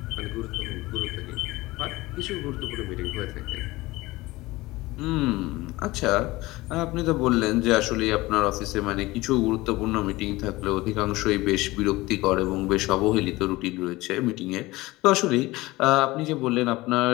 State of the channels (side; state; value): right; quieter; 20.0 dB